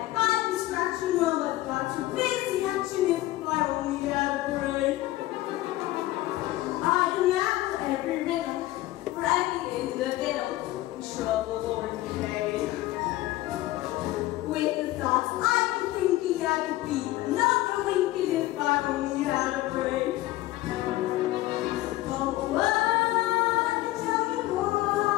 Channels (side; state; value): right; quieter; 16.9 dB